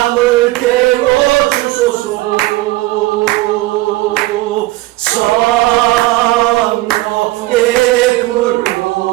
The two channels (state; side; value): quieter; left; 19.1 dB